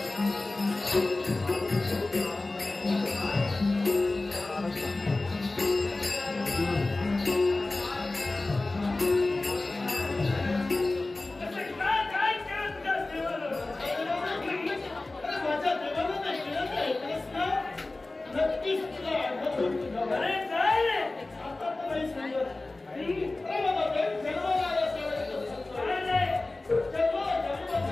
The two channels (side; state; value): right; quieter; 3.1 dB